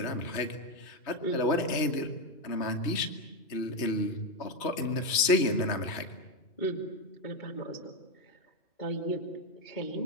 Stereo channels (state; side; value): late; right; 3.1 ms